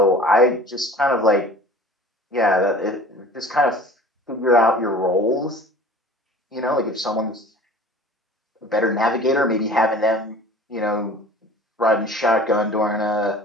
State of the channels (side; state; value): both; normal; correlation 0.44